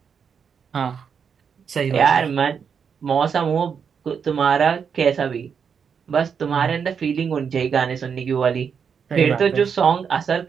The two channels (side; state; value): left; quieter; 6.7 dB